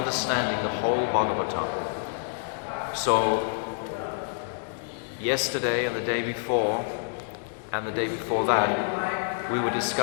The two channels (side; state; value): right; silent; digital silence